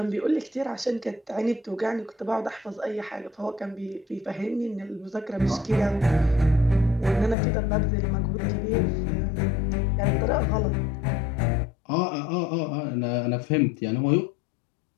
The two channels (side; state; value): right; drops out; at 7.4 s